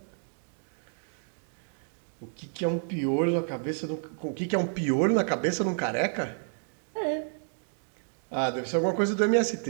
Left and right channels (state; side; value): silent; left; 58 dB below the other